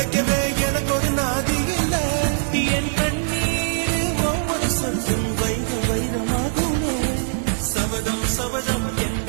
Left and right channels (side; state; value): left; silent; 60 dB below the other